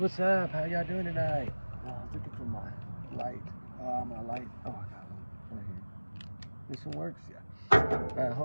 up? How y'all doing tonight? I was looking for my light. My light. Oh, I got one right here. This one works? Yeah.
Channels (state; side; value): inverted; both; correlation -1.00